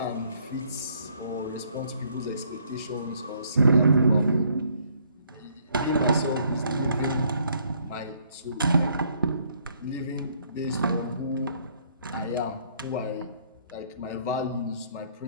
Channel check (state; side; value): inverted; both; correlation -0.66